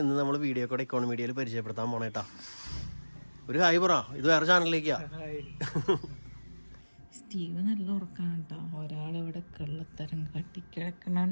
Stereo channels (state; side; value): inverted; both; correlation -1.00